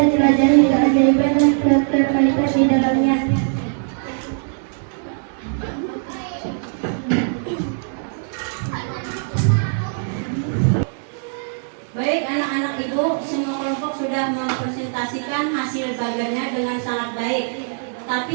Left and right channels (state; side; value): silent; left; digital silence